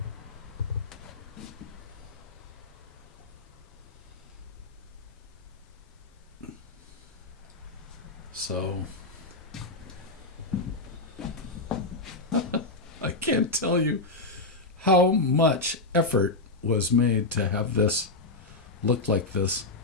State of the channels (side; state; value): right; quieter; 3.3 dB